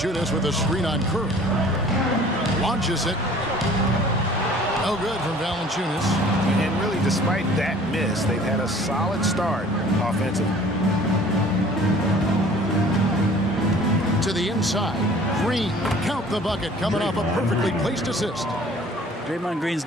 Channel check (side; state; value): both; normal; correlation 0.50